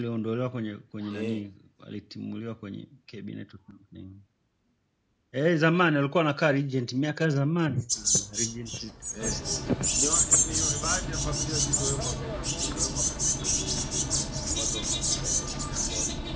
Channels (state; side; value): identical; both; correlation 1.00